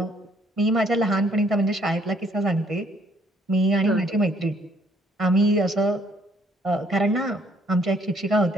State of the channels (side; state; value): both; normal; correlation 0.65